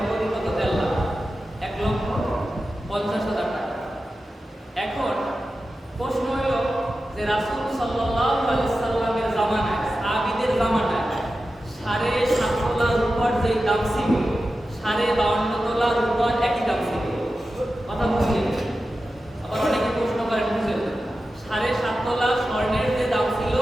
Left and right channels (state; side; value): normal; both; correlation 0.92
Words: মূল্য কত? 1.5 লাখ, 1,50,000 টাকা। এখন প্রশ্ন হলো যে রাসূল সাল্লাল্লাহু আলাইহি সাল্লামের জামানায়, সাহাবীদের জামানায় 7.5 তোলা রূপার যে দাম ছিল 52.5 তোলা রূপার একই দাম ছিল। কথা বুঝলেন? আবার অনেকে প্রশ্ন করেন বুঝলেন 7.5 তোলা স্বর্ণের যে দাম ছিল